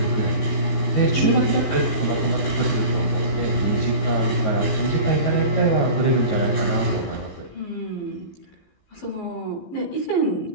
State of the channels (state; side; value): late; right; 14 ms